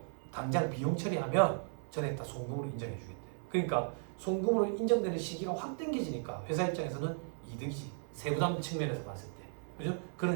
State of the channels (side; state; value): left; silent; 54 dB below the other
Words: 당장 비용 처리하면 전액 다 송금으로 인정해 주겠대. 그러니까 송금으로 인정되는 시기가 확 당겨지니까 회사 입장에서는 이득이지. 세부담 측면에서 봤을 때. 그죠?